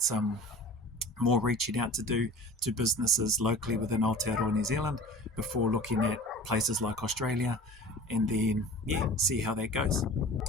some more reaching out to do to businesses locally within Aotearoa New Zealand before looking at places like Australia, and then see how that goes.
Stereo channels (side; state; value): both; normal; correlation 0.40